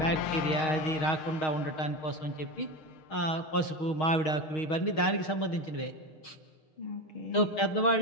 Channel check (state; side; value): late; right; 6.4 ms